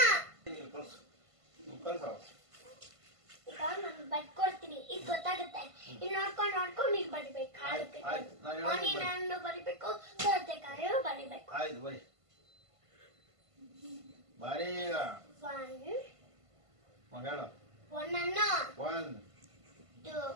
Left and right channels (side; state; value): left; late; 1.5 ms